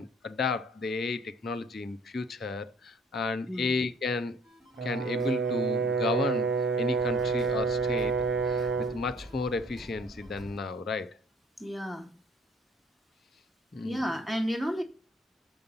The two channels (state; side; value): normal; both; correlation 0.55